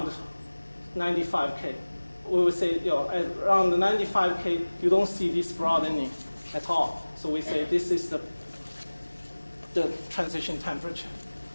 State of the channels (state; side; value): inverted; both; correlation -1.00